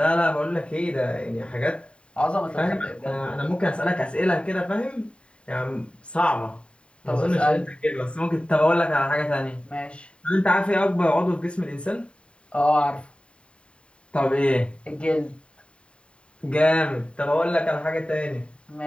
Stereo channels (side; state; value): right; late; 0.057 ms